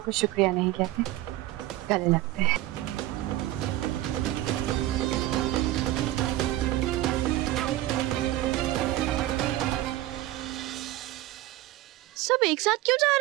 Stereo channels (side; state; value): left; quieter; 15.7 dB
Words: को शुक्रिया नहीं कहते, गले लगते हैं। सब एक साथ क्यों जा